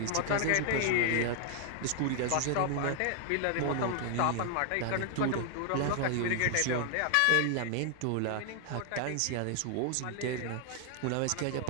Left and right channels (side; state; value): both; different; correlation 0.00